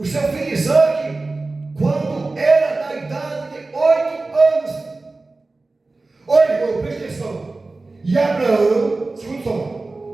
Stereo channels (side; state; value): left; quieter; 3.4 dB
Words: seu filho Isaac quando era da idade de 8 anos. Olha, irmão, presta atenção. E Abraão, escuta só.